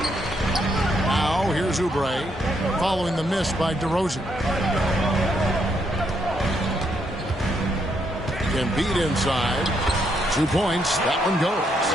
Now, here's Oubre following the miss by DeRozan. Embiid inside. 2 points. That one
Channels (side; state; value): both; normal; correlation 0.76